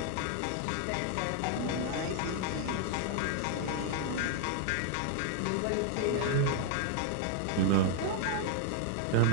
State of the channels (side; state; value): both; different; correlation 0.00